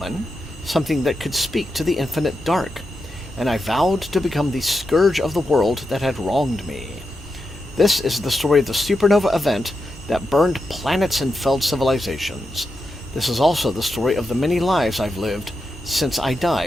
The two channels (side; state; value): both; normal; correlation 0.87